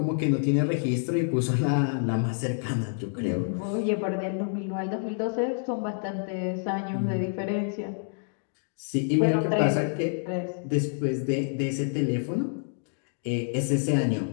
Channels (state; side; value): silent; right; digital silence